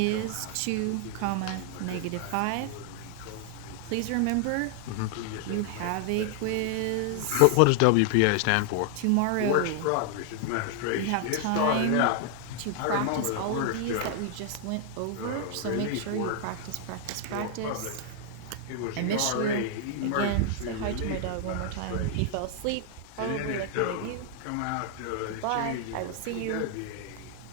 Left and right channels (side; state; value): both; different; correlation 0.00